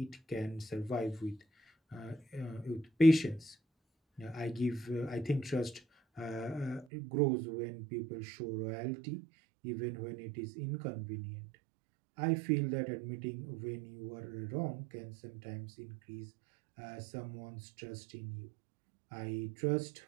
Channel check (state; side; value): drops out; left; at 6.9 s